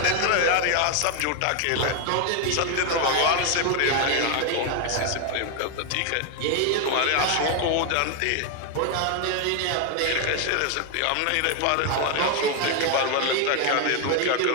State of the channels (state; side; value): different; both; correlation 0.01